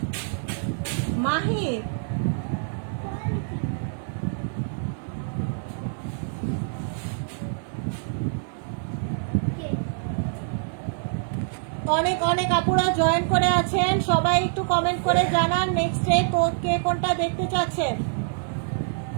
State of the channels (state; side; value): silent; left; 61 dB below the other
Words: মাহির কে অনেক অনেক আপুরা জয়েন করে আছেন, সবাই একটু কমেন্ট করে জানান নেক্সট ডে কে কোনটা দেখতে চাচ্ছেন।